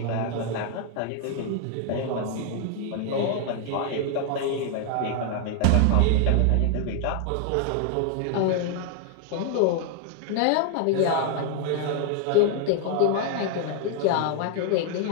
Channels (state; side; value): different; both; correlation 0.00